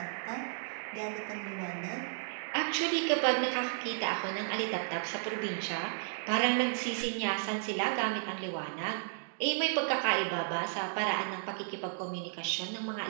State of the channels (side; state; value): left; silent; digital silence